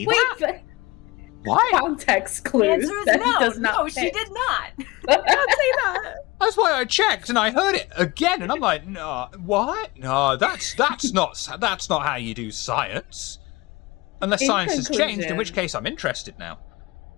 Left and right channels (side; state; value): right; quieter; 22.5 dB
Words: that? But why? Context clues. The answer is that no. does not No, fit. she did not. Don't say that. That's why I checked and I heard it again, and I'm like, no, what? No, that's not how you do science. Unless science has changed, in which case I'm interested now.